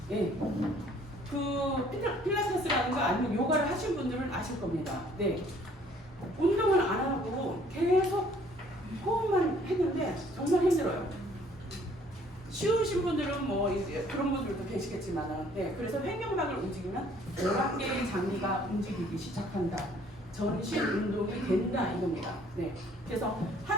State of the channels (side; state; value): both; normal; correlation 0.59